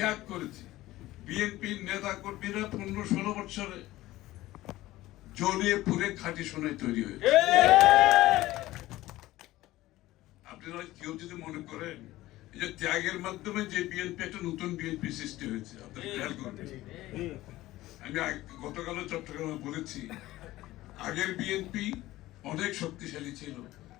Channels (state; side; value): quieter; right; 16.8 dB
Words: করেছি। বিএনপির নেতা কর্মীরা 15-16 বছরে জ্বলিয়ে পুড়ে খাঁটি সোনায় তৈরি হয়েছে। আপনারা কেউ যদি মনে করেন এই যে ত্যাগের মাধ্যমে যে বিএনপি একটা নতুন বিএনপি সৃষ্টি হয়েছে, আপনারা খেয়াল করবেন। আমি গতকালও চট্টগ্রামে বলেছি, আগের বিএনপি অনেক শক্তিশালী ছিল।